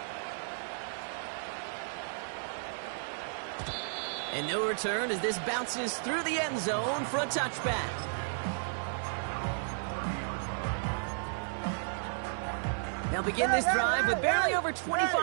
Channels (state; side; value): silent; left; 56 dB below the other